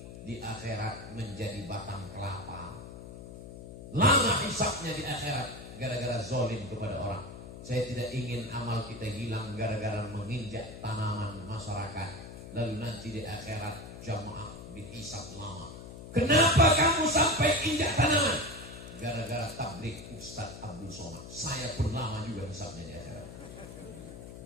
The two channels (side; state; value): left; noise; hum, 13 dB below the sound